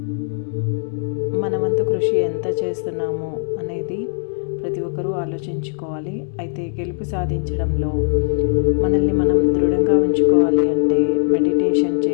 మన వంతు కృషి ఎంత చేస్తున్నామో అనేది ప్రతి ఒక్కరూ ఆలోచించుకోవాలి. అయితే గెలుపు సాధించడంలో మనల్ని మనం దృఢంగా ఉంచుకోవాలి అంటే మెడిటేషన్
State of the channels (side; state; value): right; silent; digital silence